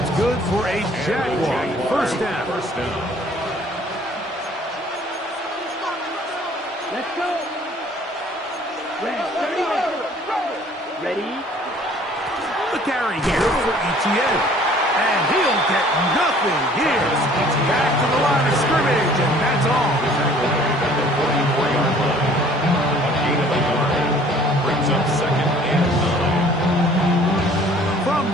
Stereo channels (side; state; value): both; normal; correlation 0.54